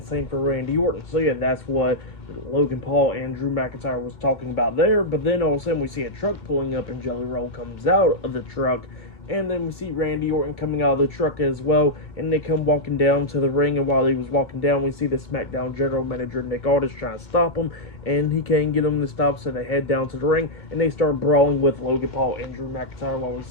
same for Randy Orton. So, yeah, that's what Logan Paul and Drew McIntyre was talking about there, but then all of a sudden we see a truck pulling up, and Jelly Roll comes out of the truck. And then we see Randy Orton coming out of the truck as well, and they come walking down to the ring, and while he was walking down, we see the SmackDown general manager, Nick Aldis, trying to stop him, and he can't get him to stop, so they head down to the ring, and they start brawling with Logan Paul and Drew McIntyre, while we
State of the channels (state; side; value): late; right; 2.2 ms